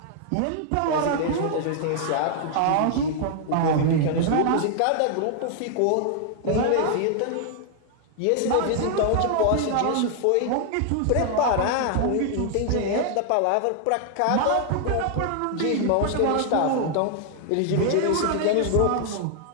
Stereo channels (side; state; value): both; different; correlation 0.00